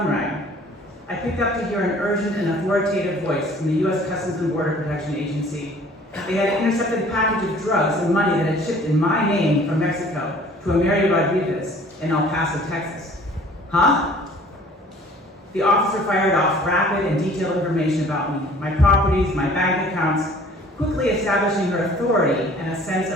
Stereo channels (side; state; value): both; normal; correlation 0.52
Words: rang. I picked up to hear an urgent and authoritative voice from the U.S. Customs and Border Protection Agency. They had intercepted a package of drugs and money that had shipped in my name from Mexico to a Mary Rodriguez in El Paso, Texas. Huh? The officer fired off rapid and detailed information about me, my properties, my bank accounts, quickly establishing her authority and a sense